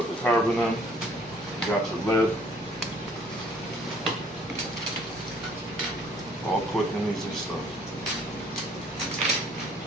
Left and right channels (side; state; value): both; normal; correlation 0.59